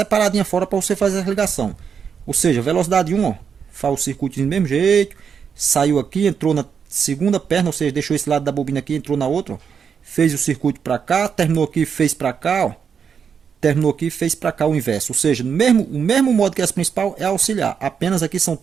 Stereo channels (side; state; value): left; quieter; 6.8 dB